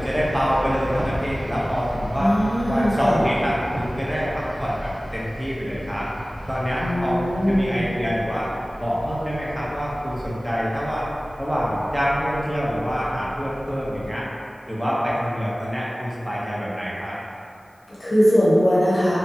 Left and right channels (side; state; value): both; normal; correlation 0.97